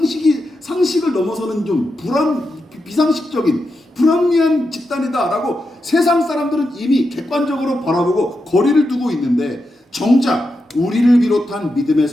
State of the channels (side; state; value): both; normal; correlation 0.87